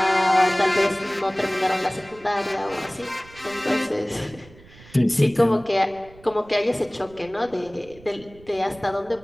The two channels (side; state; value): right; noise; rumble, 23 dB below the sound